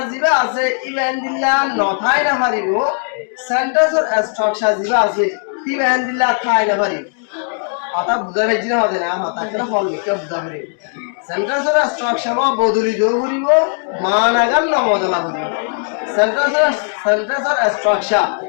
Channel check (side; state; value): right; silent; 56 dB below the other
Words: জিবা আছে ইবা হ্যান্দিল্লা নথাই না হারিব সেন্টেন্সর স্ট্রাকচার জিবা আছে ফিবা হ্যান্দিল্লা থাই না হারিব হতা বুঝা পাইছি না হতে না হতা কেন হল লিখে বুঝা পারিব সেন্টেন্সর স্ট্রাকচার বদলি যোগ করিব মানাগান ন বদলা করিব সেন্টেন্সর স্ট্রাকচার